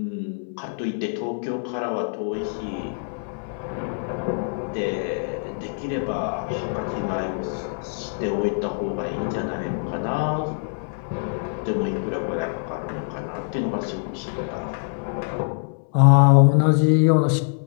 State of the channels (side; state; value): right; silent; 60 dB below the other